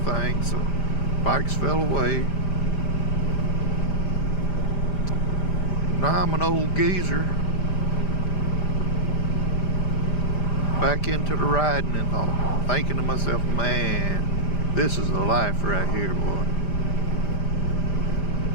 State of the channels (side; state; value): right; late; 5.0 ms